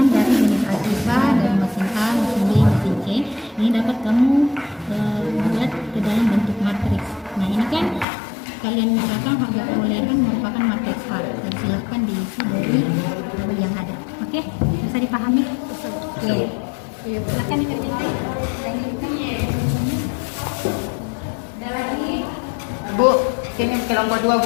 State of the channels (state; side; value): drops out; right; at 8.1 s